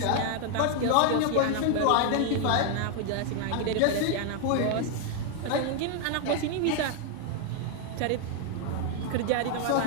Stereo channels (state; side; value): different; both; correlation 0.00